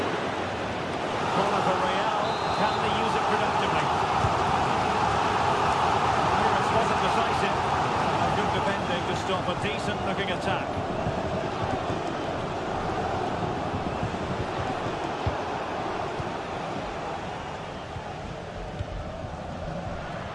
Corner for Real. Can they use it productively? Clearance wasn't decisive. Good defending to stop a decent-looking attack.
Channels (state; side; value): identical; both; correlation 1.00